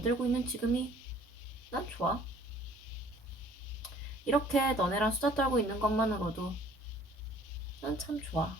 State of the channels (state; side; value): normal; both; correlation 0.54